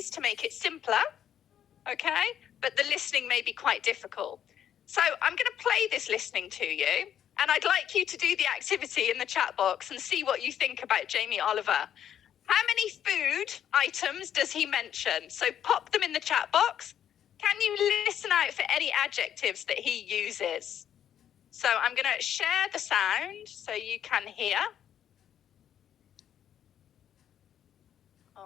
to make it simpler, okay? But the listening may be quite difficult. So I'm going to play this listening to you, and I'd like you to do the activity in the chat box and see what you think about Jamie Oliver. How many food items does he mention? So pop them in the chat box. Can you listen out for any adjectives that he uses? So I'm going to share the sound so you can hear.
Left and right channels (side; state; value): right; quieter; 9.9 dB